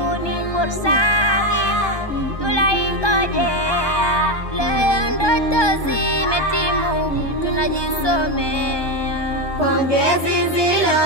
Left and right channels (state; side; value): late; right; 1.2 ms